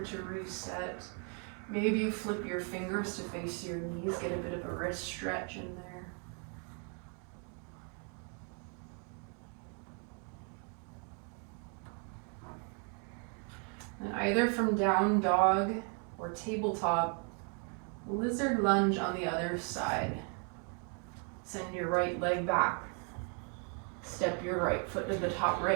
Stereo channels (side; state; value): left; quieter; 39.7 dB